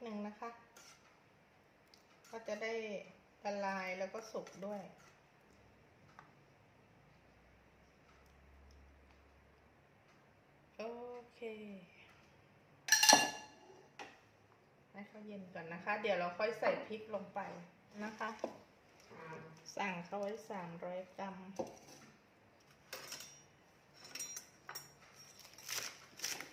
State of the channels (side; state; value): both; identical; correlation 1.00